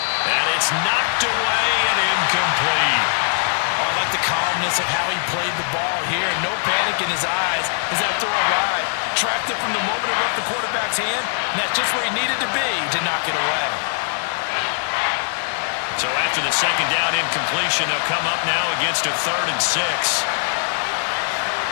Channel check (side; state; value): right; silent; 58 dB below the other